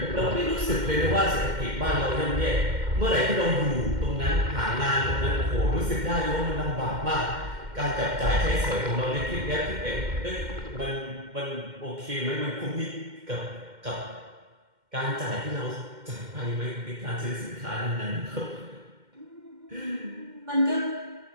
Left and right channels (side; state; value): left; late; 2.1 ms